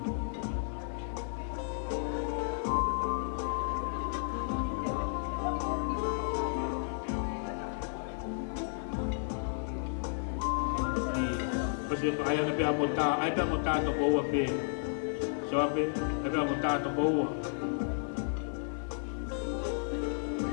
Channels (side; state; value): right; silent; 56 dB below the other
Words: se pa ai pe amota ai pe amota to ko pe Sioape ai pe amota to ko